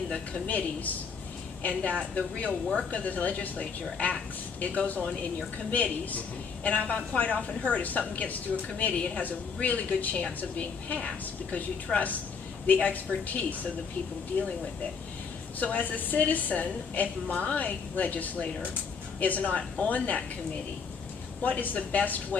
the committees, and that the real work of the legislature it goes on in your committees. And I've quite often heard if something gets through a committee, it has a really good chance of being passed because you trust the expertise of the people dealing with it. So as a citizen, if my legislator is not on that committee, what is the best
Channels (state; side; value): quieter; right; 5.7 dB